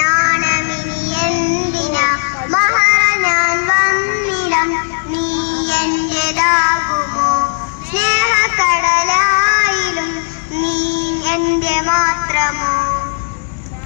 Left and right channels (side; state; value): right; silent; digital silence